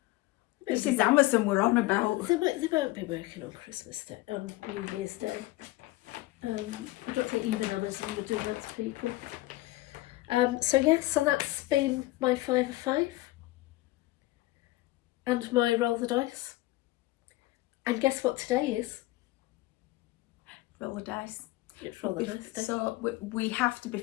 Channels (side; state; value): right; quieter; 18.7 dB